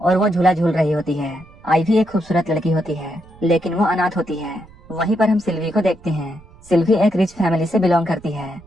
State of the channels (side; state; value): right; noise; rumble, 24 dB below the sound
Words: और वो झूला झूल रही होती है। आइवी एक खूबसूरत लड़की होती है लेकिन वो अनाथ होती है। वहीं पर हम सिल्वी को देखते हैं। सिल्वी एक रिच फैमिली से बिलोंग करती है